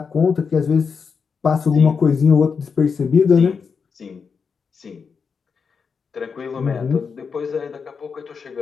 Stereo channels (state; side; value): quieter; right; 5.7 dB